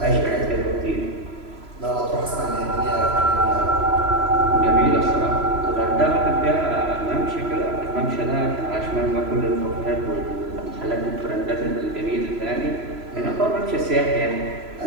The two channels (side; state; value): left; late; 3.0 ms